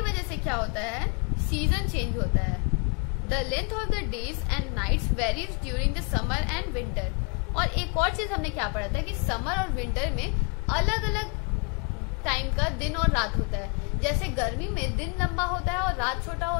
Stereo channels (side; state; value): right; quieter; 36.0 dB